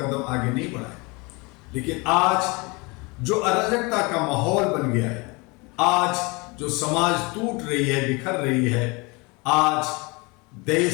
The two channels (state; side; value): quieter; right; 27.3 dB